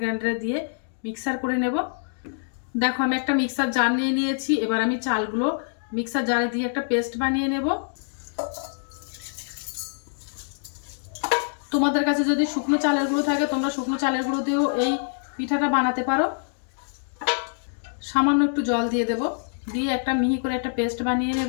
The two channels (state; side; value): silent; right; digital silence